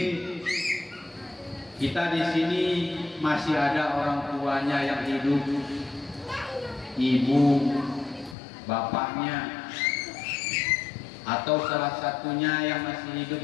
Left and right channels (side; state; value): right; drops out; at 8.3 s